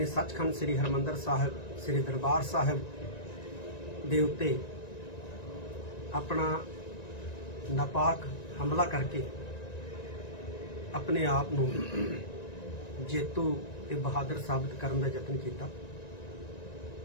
ਸੱਚਖੰਡ ਸ੍ਰੀ ਹਰਿਮੰਦਰ ਸਾਹਿਬ ਸ੍ਰੀ ਦਰਬਾਰ ਸਾਹਿਬ ਦੇ ਉੱਤੇ ਆਪਣਾ ਨਾਪਾਕ ਹਮਲਾ ਕਰਕੇ ਆਪਣੇ ਆਪ ਨੂੰ ਜੇਤੂ ਤੇ ਬਹਾਦਰ ਸਾਬਤ ਕਰਨ ਦਾ ਯਤਨ ਕੀਤਾ,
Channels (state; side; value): late; right; 1.9 ms